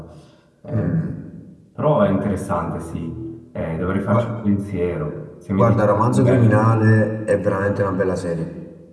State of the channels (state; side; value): identical; both; correlation 1.00